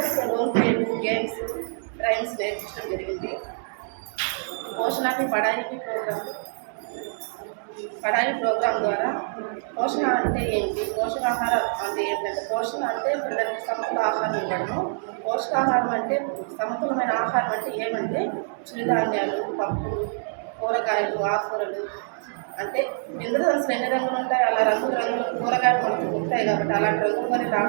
రోల్ ప్లే గేమ్స్ రైమ్స్ నేర్పించడం జరిగింది. పోషణాభి పడాయి ప్రోగ్రాం ద్వారా పోషణ అంటే ఏంటి, పోషకాహారం అంటే ఏంటంటే పోషణ అంటే పిల్లలకి సమతుల ఆహారం ఉండడము, పోషకాహారం అంటే సమతులమైన ఆహారం అంటే ఏమంటే చిరుధాన్యాలు, పప్పులు, కూరగాయలు, ఆకుకూరలు. అంటే ఇంద్రధనుసులు ఎన్ని రంగులు ఉంటాయి, అలా రంగులు కూరగాయలు మనకు ఉంటాయి కాబట్టి అలాంటి రంగులు వారి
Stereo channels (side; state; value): left; silent; digital silence